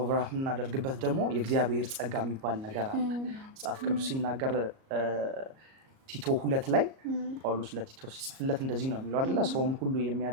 የምናደርግበት ደግሞ የእግዚአብሔር ጸጋ የሚባል ነገር አለ። መጽሐፍ ቅዱስ ሲናገር ቲቶ 2 ላይ ጳውሎስ ለቲቶ ሲጽፍለት እንደዚህ ነው የሚለው አይደለ? ሰውን ሁሉ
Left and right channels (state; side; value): late; left; 38 ms